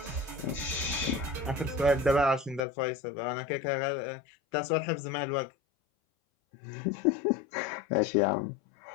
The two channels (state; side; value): drops out; right; at 2.6 s